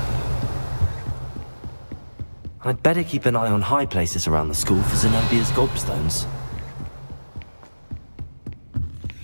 I'd better keep an eye on high places around the school for Zenobia's gobstones.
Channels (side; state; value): both; inverted; correlation -1.00